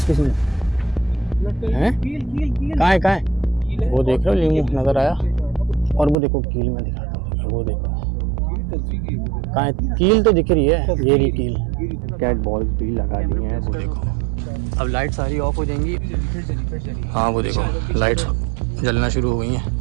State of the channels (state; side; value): drops out; left; at 6.2 s